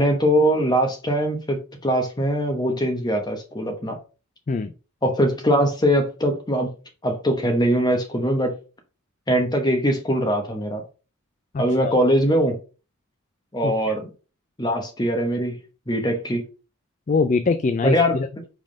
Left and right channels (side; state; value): both; normal; correlation 0.53